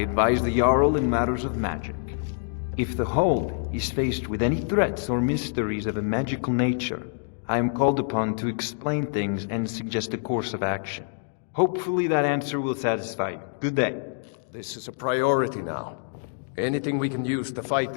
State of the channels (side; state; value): right; silent; digital silence